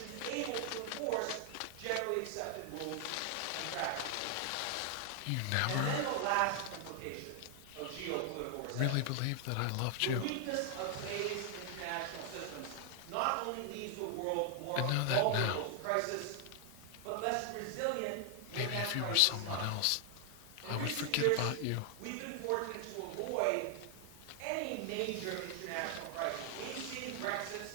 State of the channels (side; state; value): both; different; correlation 0.00